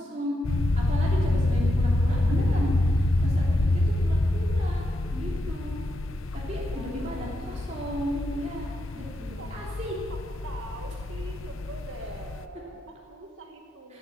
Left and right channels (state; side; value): normal; both; correlation 0.85